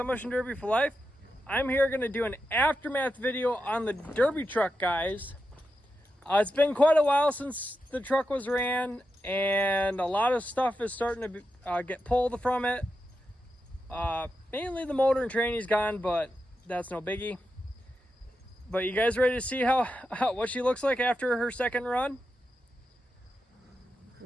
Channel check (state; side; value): normal; both; correlation 0.88